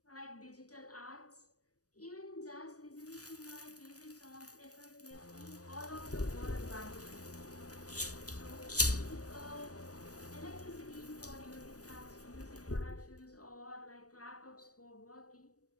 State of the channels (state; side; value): late; right; 0.66 ms